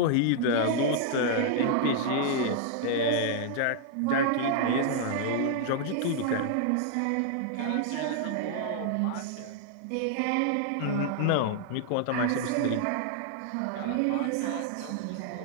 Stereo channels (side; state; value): both; different; correlation -0.01